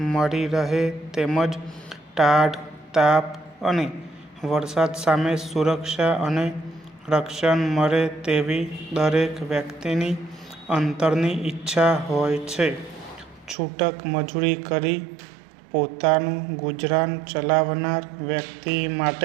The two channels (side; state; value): left; drops out; at 13.6 s